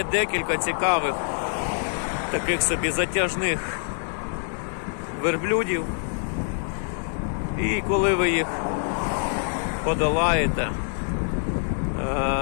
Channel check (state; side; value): silent; right; digital silence